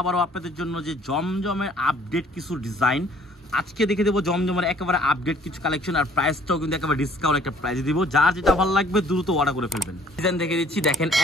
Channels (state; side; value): normal; both; correlation 0.58